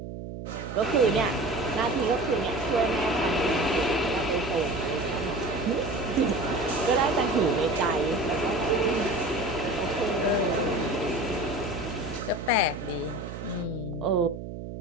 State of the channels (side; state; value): right; noise; hum, 9 dB below the sound